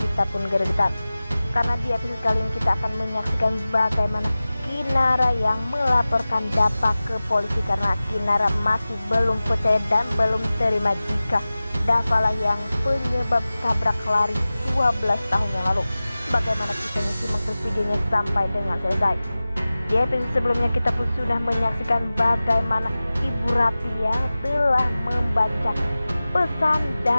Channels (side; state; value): both; inverted; correlation -0.97